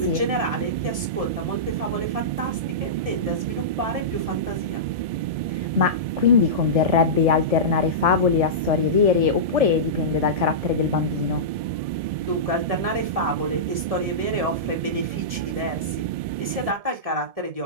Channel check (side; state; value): left; late; 1.7 ms